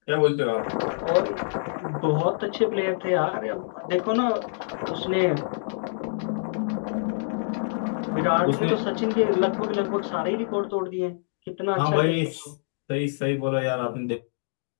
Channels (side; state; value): right; silent; digital silence